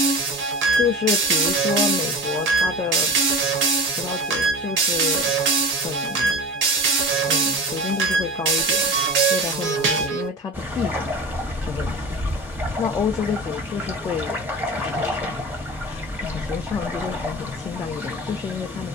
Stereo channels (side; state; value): both; normal; correlation 0.32